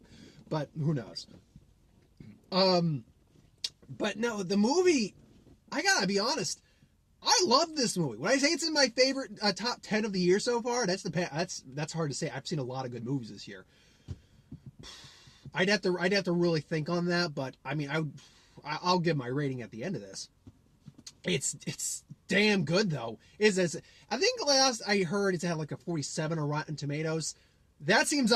but who knows? But no, the movie, I gotta be honest, I love this movie. When I say it's in my favorite top 10 of the year so far, that's hard to say. I've seen a lot of good movies this year. I'd have to really think on that, but I mean, I'll give my rating at the end of this. It's damn good though. I think last I heard it's had like a 47 on Rotten Tomatoes. That seems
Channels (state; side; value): identical; both; correlation 1.00